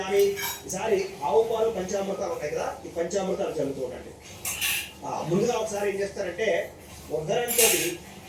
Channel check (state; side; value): identical; both; correlation 1.00